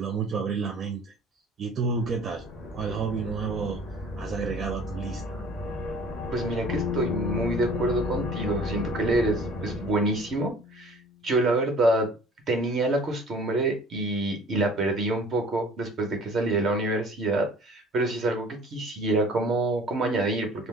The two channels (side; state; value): both; normal; correlation 0.49